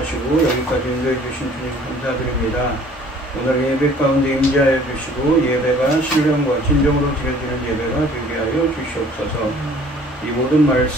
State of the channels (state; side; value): normal; both; correlation 0.53